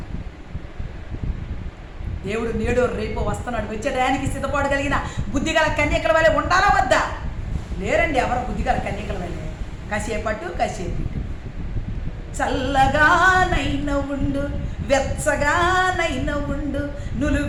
దేవుడు నేడు రేపు వస్తున్నాడు. వచ్చే టయానికి సిద్ధపడగలిగిన బుద్ధిగల కన్యకల వల్లే ఉండాలా వద్దా? లేరండి ఎవరు బుద్ధిగల కన్యకల వల్లే. కాసేపట్టు కాసేపు చల్లగానైన ఉండు, వెచ్చగానైన ఉండు, నువ్వు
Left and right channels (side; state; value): both; identical; correlation 1.00